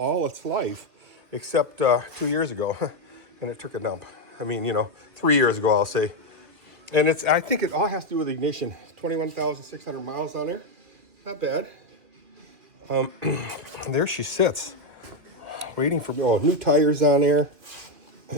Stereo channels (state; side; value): late; left; 2.7 ms